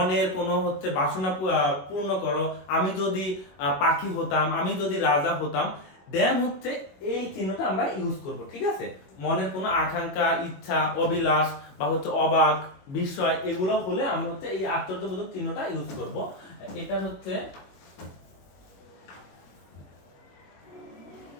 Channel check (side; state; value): right; late; 21 ms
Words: কোনো হচ্ছে বাসনা পূর্ণ করো, আমি যদি পাখি হতাম, আমি যদি রাজা হতাম, দেন হচ্ছে এই চিহ্নটা আমরা ইউজ করব। ঠিক আছে। মনের কোনো আকাঙ্ক্ষা, ইচ্ছা, অভিলাষ বা হচ্ছে অবাক বিস্ময় এগুলো হলে আমরা হচ্ছে এই আশ্চর্যবোধক চিহ্নটা ইউজ করব। এটা হচ্ছে